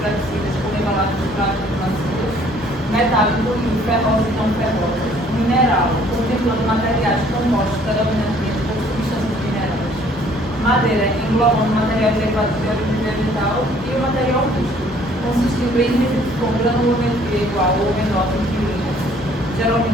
flexíveis por embalagens plásticas macias. Metálico e ferroso e não ferroso. Mineral, contemplando materiais compostos predominantemente por substâncias minerais. Madeira, englobando materiais derivados de origem vegetal e o material rústico, consistindo em resíduos com granulometria igual ou menor que milímetros,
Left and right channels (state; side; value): normal; both; correlation 0.59